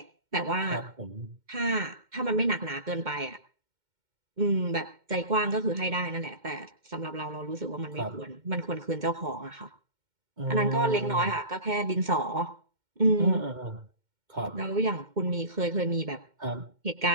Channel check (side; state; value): left; late; 2.1 ms